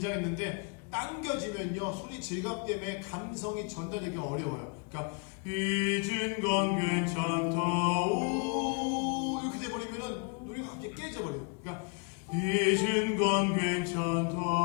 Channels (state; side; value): quieter; right; 35.9 dB